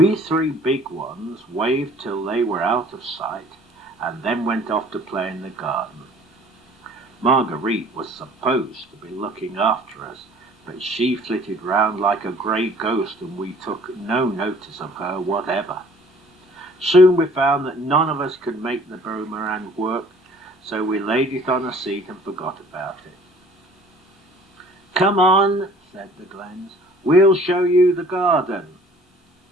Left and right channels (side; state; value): both; normal; correlation 0.52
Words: 3 big ones waved till they were out of sight, and then went off to play in the garden. Marguerite was supposed to be looking after us, but she flitted round like a grey ghost, and we took no notice of her whatever. Soon we found that none of us could make the boomerang work, so we laid it on a seat and forgot about it. "Come on," said the Glens, "we'll show you the garden."